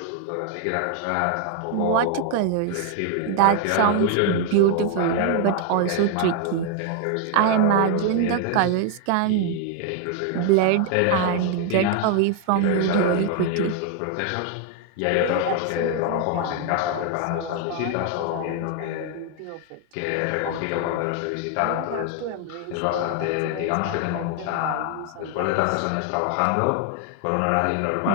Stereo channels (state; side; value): different; both; correlation 0.01